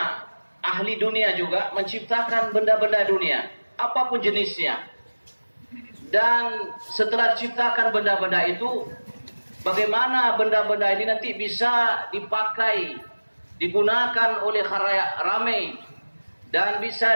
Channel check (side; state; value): both; inverted; correlation -1.00